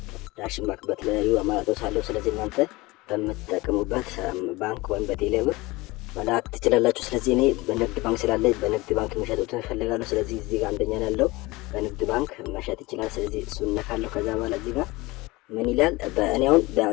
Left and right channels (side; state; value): right; quieter; 21.8 dB